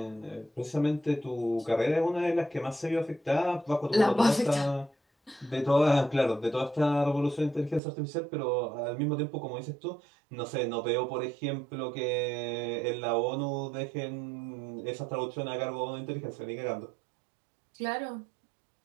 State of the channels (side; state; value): left; drops out; at 7.8 s